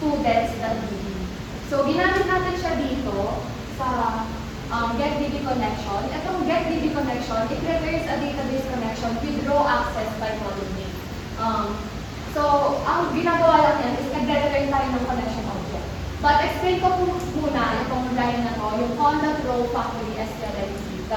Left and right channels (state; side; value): identical; both; correlation 1.00